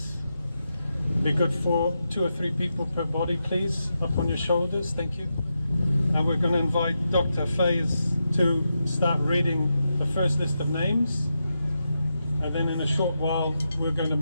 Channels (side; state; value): both; inverted; correlation -0.87